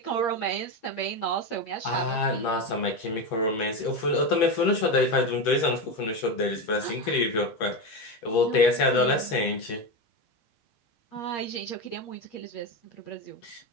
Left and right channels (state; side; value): late; right; 9.1 ms